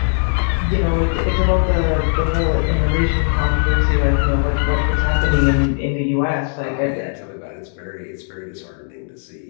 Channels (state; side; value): silent; right; digital silence